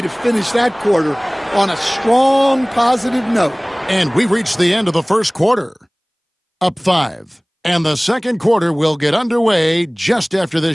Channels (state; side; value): identical; both; correlation 1.00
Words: finish that quarter on a strong, positive note. And we've reached the end of the first quarter. Up 5. And the second quarter will get underway just after